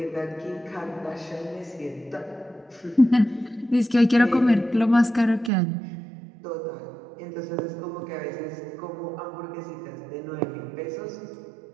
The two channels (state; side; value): drops out; left; at 5.5 s